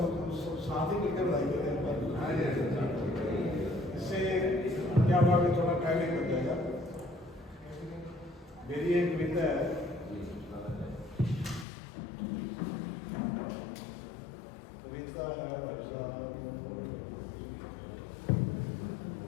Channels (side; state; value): right; drops out; at 11.7 s